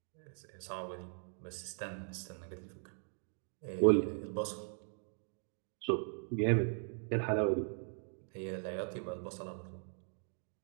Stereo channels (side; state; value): left; silent; 52 dB below the other